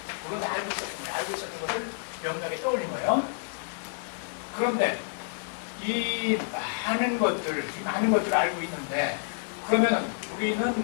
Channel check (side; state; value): right; silent; digital silence